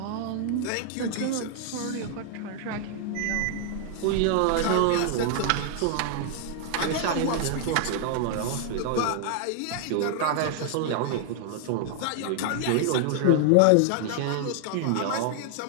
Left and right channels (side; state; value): both; different; correlation 0.00